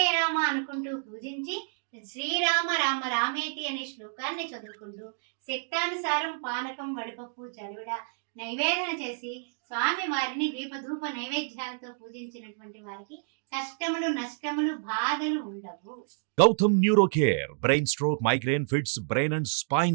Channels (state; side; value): silent; left; digital silence